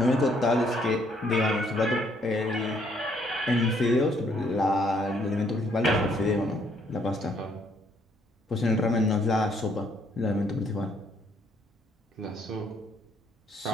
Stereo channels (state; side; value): normal; both; correlation 0.68